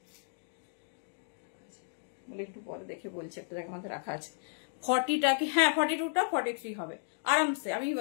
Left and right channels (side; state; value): right; silent; digital silence